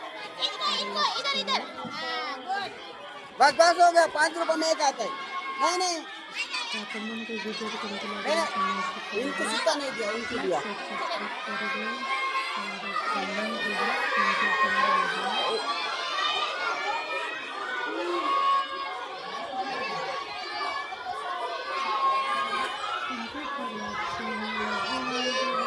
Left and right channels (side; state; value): both; identical; correlation 1.00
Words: बस बस हो गया 5 रुपए में एक आता है नहीं इनको सिक्का नहीं दिया उनको दिया